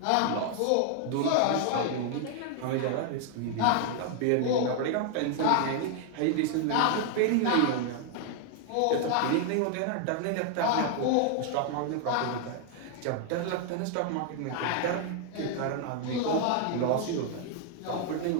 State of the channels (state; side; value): different; both; correlation 0.00